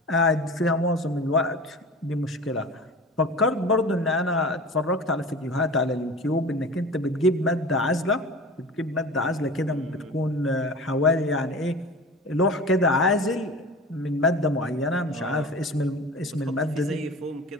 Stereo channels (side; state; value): both; normal; correlation 0.36